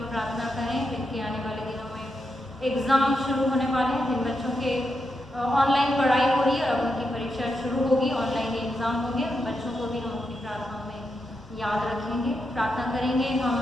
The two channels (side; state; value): both; normal; correlation 0.85